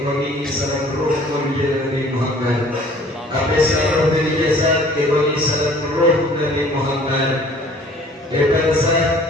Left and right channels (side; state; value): both; normal; correlation 0.52